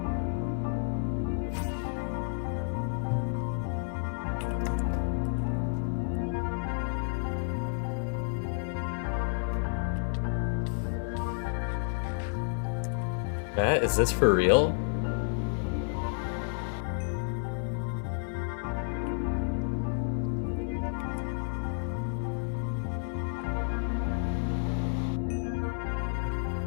Chat, is this for real?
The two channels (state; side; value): silent; right; 57 dB below the other